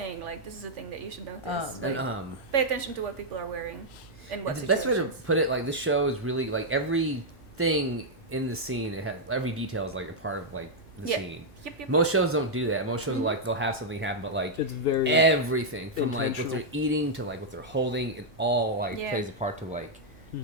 like this is a thing that you should notice. And, Like, pay attention to what people are wearing and what The best way to situations. put it, like this show is really like everything in the scene. It has every detail is like a part of like the Yeah. scene. Yep. Most shows don't do that. Most shows like they'll have something happen, but like It's very everything from like what intentional. they're eating to like what they're holding, it all like Yeah. plays a part to like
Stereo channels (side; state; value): right; noise; hum, 26 dB below the sound